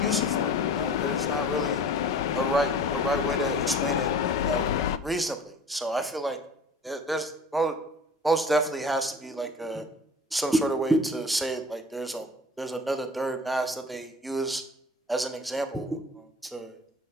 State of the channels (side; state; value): both; normal; correlation 0.42